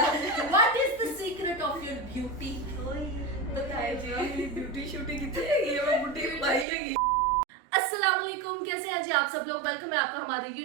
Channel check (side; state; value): left; drops out; at 6.7 s